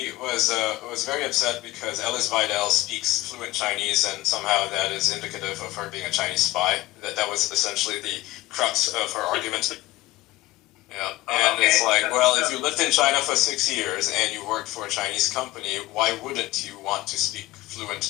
was very upset because Alice Weidel speaks fluent Chinese, and somehow that is indicative of her being a Chinese spy. That was essentially the crux of her argument. Yeah, and okay. It's like, well, if you lived in China for 6 years and you worked for a Chinese company, why wouldn't you want to speak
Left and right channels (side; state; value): right; quieter; 18.1 dB